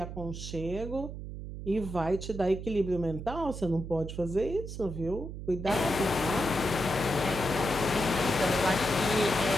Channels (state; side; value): noise; right; hum, 8 dB below the sound